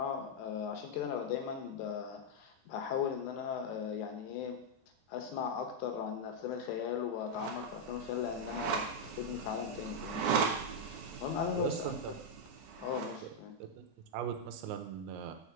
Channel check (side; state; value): both; normal; correlation -0.01